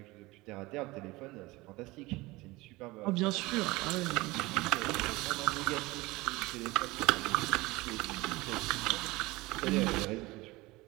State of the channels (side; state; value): left; quieter; 21.3 dB